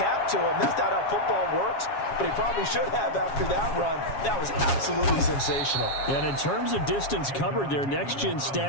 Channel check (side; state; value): right; late; 7.3 ms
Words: to him. That's not how football works, but he probably should have after that run. That was absolutely sensational. And in terms of distance covered, their next-gen